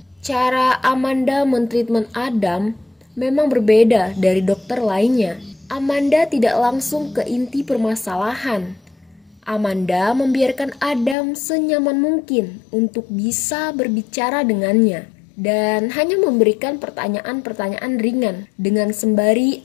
Cara Amanda mentreatment Adam memang berbeda dari dokter lainnya. Amanda tidak langsung ke inti permasalahan. Amanda membiarkan Adam senyaman mungkin untuk bisa berbicara dengannya dan hanya memberikan pertanyaan-pertanyaan ringan. Dengan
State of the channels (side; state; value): right; drops out; at 11.2 s